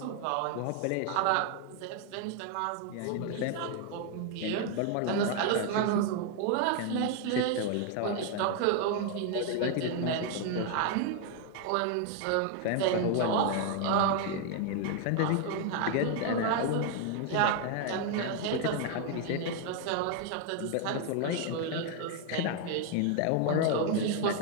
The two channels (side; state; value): both; different; correlation 0.01